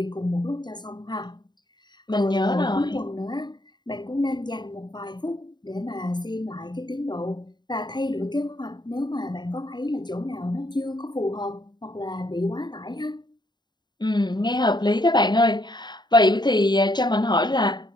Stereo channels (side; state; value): right; late; 0.21 ms